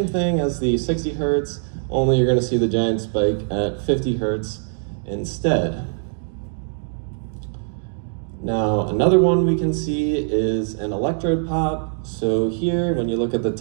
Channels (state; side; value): silent; left; digital silence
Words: thing as the 60 hertz, only you're going to see the giant spike at 50 hertz instead. Now, another one we can see is an electrode pop. So here, when you look at the